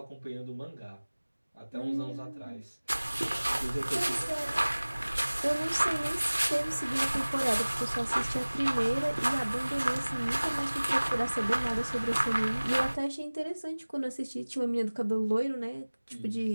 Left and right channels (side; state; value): both; inverted; correlation -1.00